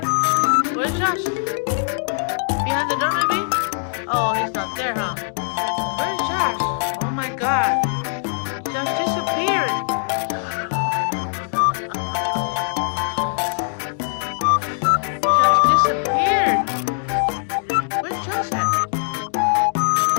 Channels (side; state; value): right; silent; digital silence